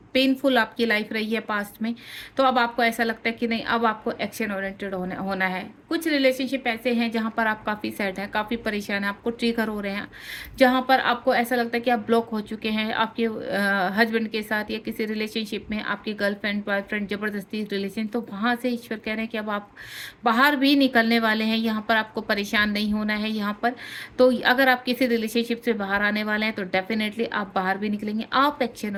पेनफुल आपकी लाइफ रही है पास्ट में, तो अब आपको ऐसा लगता है कि नहीं, अब आपको एक्शन ओरिएंटेड होना होना है। कुछ रिलेशनशिप ऐसे हैं जहाँ पर आप काफ़ी सैड हैं, काफ़ी परेशान हैं, आपको ट्रिगर हो रहे हैं, जहाँ पर आपको ऐसा लगता है कि आप ब्लॉक हो चुके हैं आपके हस्बैंड के साथ या किसी रिलेशनशिप में, आपकी गर्लफ्रेंड बॉयफ्रेंड ज़बरदस्ती रिलेशन, तो वहाँ से ईश्वर कह रहे हैं कि अब आप बाहर भी निकलने वाले हैं। यहाँ पर आपको परेशान नहीं होना है यहाँ पर। तो अगर आप किसी रिलेशनशिप से बाहर आने वाले हैं तो डेफिनेटली आप बाहर भी निकलेंगे। आप एक्शन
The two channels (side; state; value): both; identical; correlation 1.00